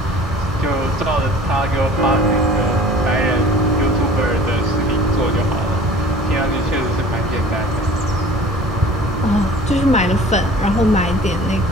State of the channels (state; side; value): normal; both; correlation 0.46